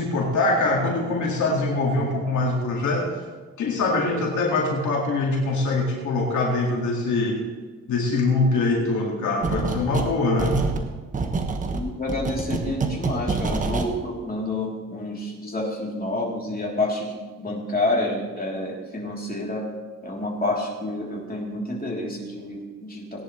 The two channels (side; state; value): both; normal; correlation 0.30